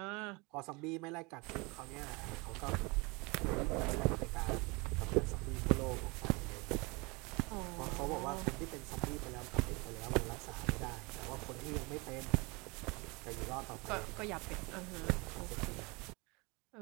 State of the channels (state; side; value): quieter; left; 27.1 dB